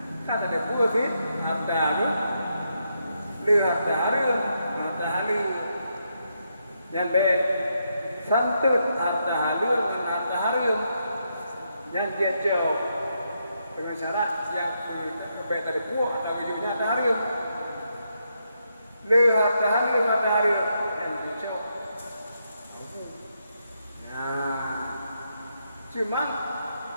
Kata ada buah sih. Ada tu. Lihat hari. Yang baik. Santut harta halus dan harta harum yang dia jauh dengan syarat yang baik dari buah atau wujudnya harta harum le harta harum yang dia jauh. Nah, cuma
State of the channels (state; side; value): inverted; both; correlation -0.81